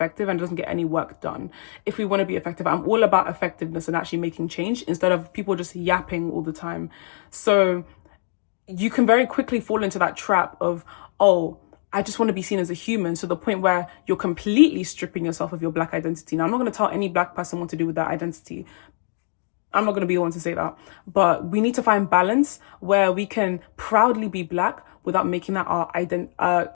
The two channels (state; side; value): silent; right; digital silence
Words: and doesn't get any work done. If we want to be effective, I'm all about effectiveness and actually making change instead of people just yapping all the time. So you can very quickly fall into that trap of, oh, I just want to be seen as a human, to the point where you're completely stripping yourself of your black identity. Now, I'm not going to tell any black person what to do with that identity. I'm not going to be the one to say that, but we need to find balance where we can proudly be black without making that our